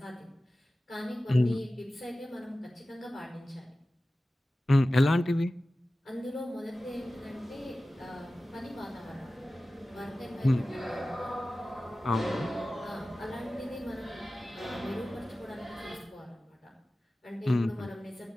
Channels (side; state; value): both; normal; correlation 0.96